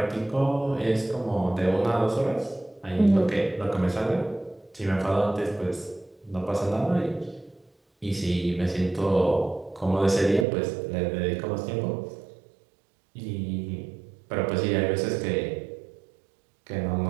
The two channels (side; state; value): left; drops out; at 10.5 s